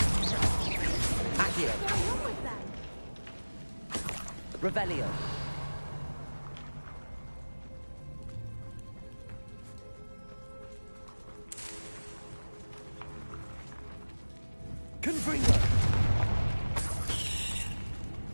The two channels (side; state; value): both; inverted; correlation -1.00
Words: Accio! What's going on with them? Revelio! Confringo!